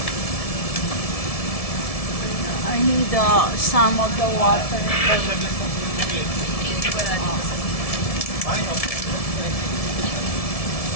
I need some of the water.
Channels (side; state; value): right; late; 1.7 ms